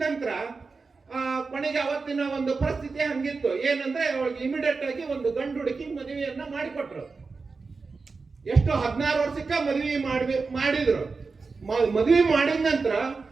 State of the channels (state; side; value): quieter; left; 4.4 dB